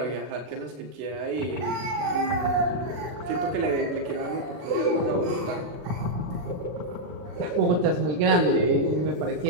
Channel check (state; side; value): late; left; 40 ms